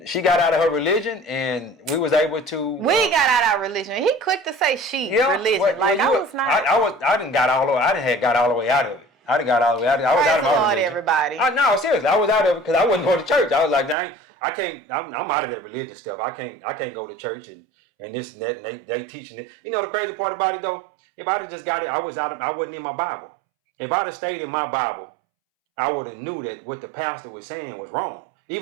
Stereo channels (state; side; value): drops out; left; at 14.0 s